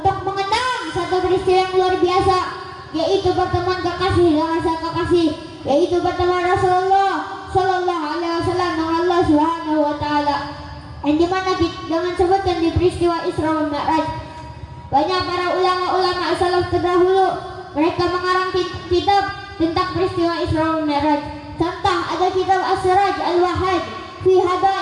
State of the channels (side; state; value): both; identical; correlation 1.00